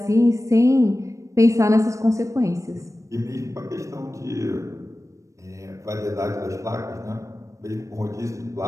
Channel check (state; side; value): late; left; 0.15 ms